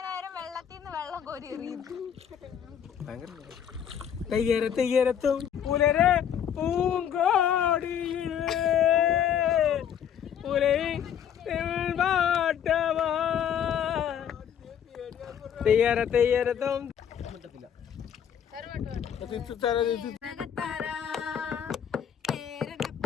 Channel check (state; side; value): quieter; right; 8.9 dB